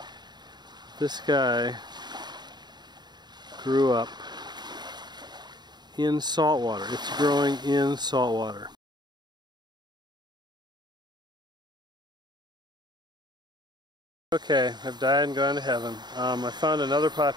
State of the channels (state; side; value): late; left; 0.21 ms